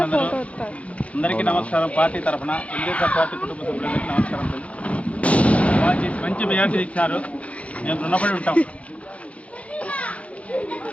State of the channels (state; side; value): late; right; 0.064 ms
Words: అందరికీ నమస్కారం. పార్టీ తరఫున తెలుగుదేశం పార్టీ కుటుంబ సభ్యులందరికీ నమస్కారం. బాగా చేసి మంచి మెజార్టీ ఇచ్చారు. మేము రుణపడి ఉంటాం.